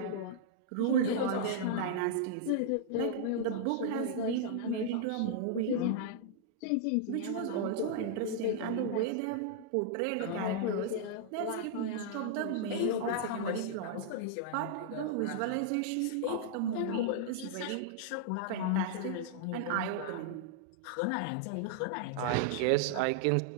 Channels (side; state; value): both; different; correlation -0.01